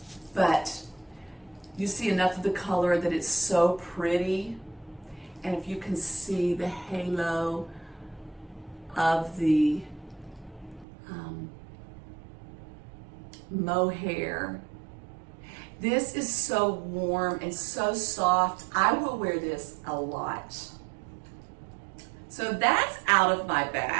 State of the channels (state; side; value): drops out; left; at 10.9 s